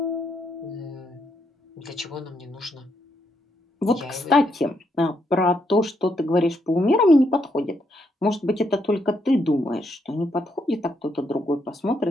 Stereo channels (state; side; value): normal; both; correlation 0.77